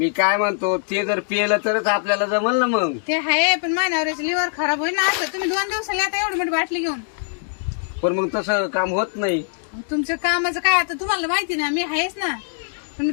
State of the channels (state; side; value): silent; right; digital silence